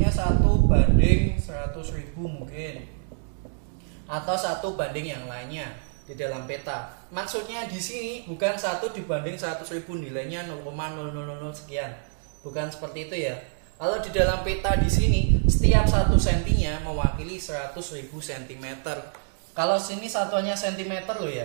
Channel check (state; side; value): silent; left; digital silence